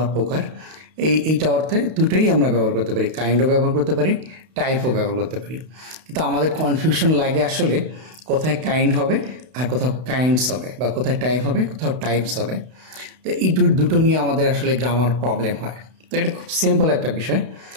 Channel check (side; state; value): left; late; 32 ms